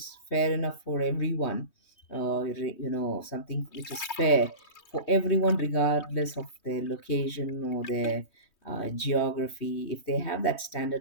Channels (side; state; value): right; late; 3.2 ms